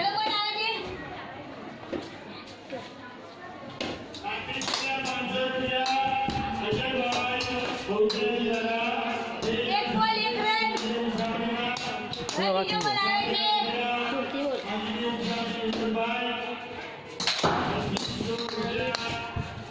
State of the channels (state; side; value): identical; both; correlation 1.00